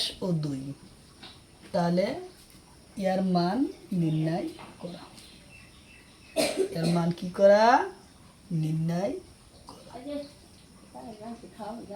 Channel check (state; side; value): identical; both; correlation 1.00